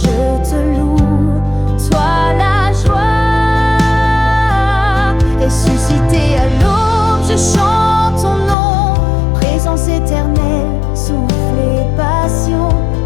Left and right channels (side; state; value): right; drops out; at 8.6 s